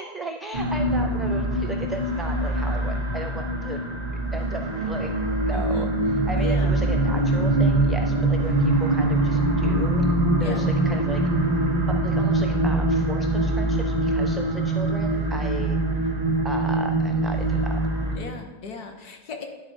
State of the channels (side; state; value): right; late; 1.9 ms